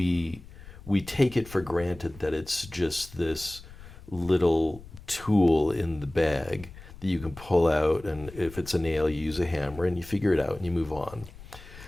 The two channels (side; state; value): left; noise; rumble, 18 dB below the sound